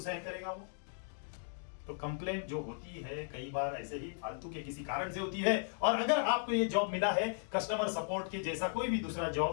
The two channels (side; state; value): right; silent; digital silence